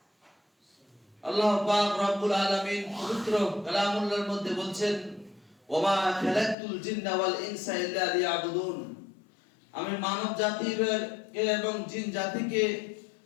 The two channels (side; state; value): right; drops out; at 6.6 s